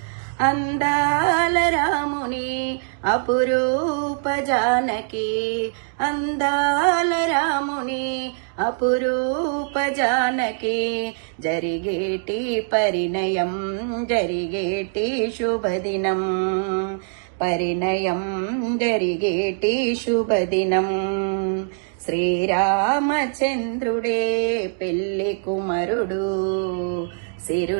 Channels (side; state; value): left; silent; digital silence